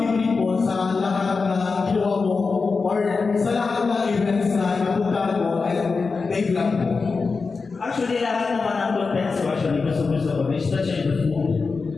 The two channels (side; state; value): right; quieter; 4.5 dB